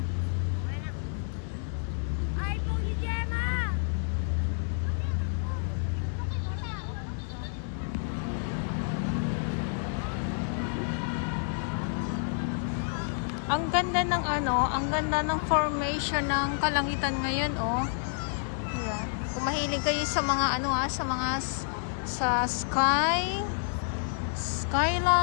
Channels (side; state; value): right; silent; 58 dB below the other